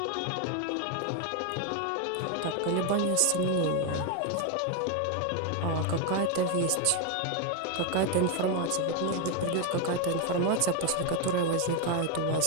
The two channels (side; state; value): both; different; correlation 0.02